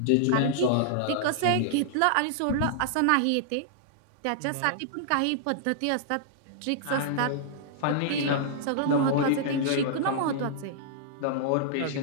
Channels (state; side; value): different; both; correlation -0.01